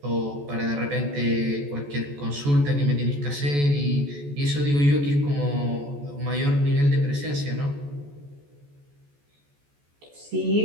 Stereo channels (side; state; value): left; late; 14 ms